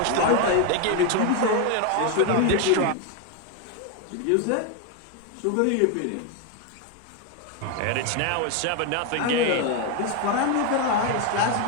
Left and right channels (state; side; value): different; both; correlation 0.02